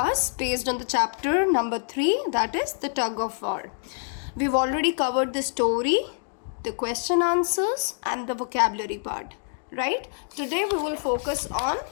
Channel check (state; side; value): silent; right; 56 dB below the other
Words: based on the chapter number 3, that is the tug of war. We've already covered the story, the question answers, and the vocabulary part, right? Today, we will focus on